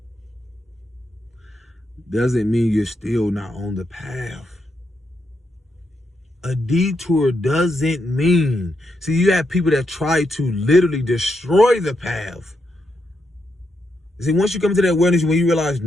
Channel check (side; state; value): both; normal; correlation 0.82